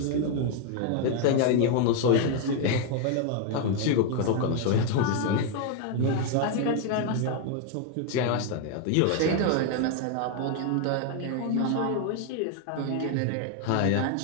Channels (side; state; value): both; different; correlation 0.01